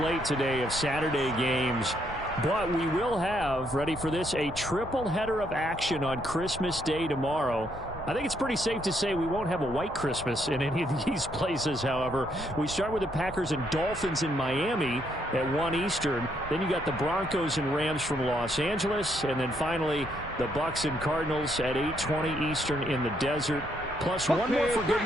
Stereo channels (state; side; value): normal; both; correlation 0.74